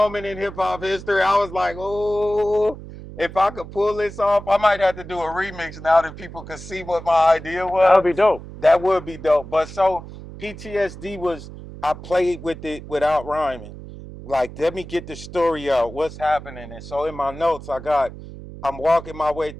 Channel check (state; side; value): noise; right; hum, 14 dB below the sound